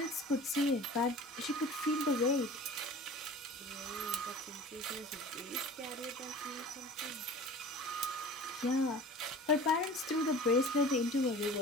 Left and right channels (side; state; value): both; normal; correlation 0.41